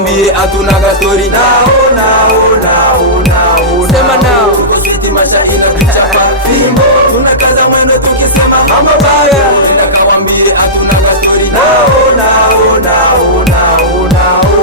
atunaga story. Sema no. Tuko switi masha inatuchapa, fimbo. Tunakaza mwendo tukisema mambo bado. Nenda kawambie atunaga story.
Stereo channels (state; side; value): normal; both; correlation -0.18